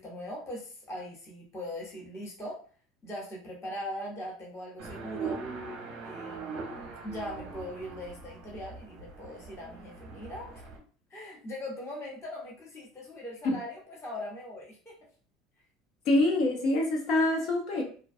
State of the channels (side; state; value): both; normal; correlation 0.62